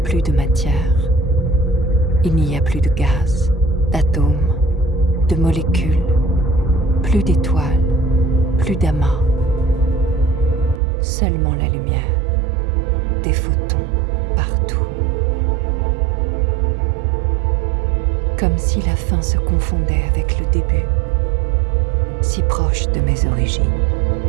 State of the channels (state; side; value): drops out; left; at 10.8 s